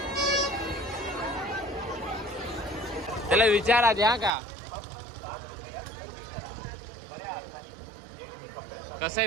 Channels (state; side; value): drops out; left; at 4.3 s